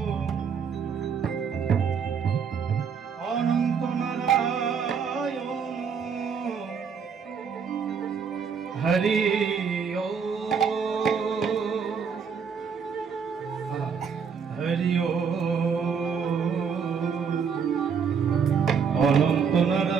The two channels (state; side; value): quieter; left; 6.4 dB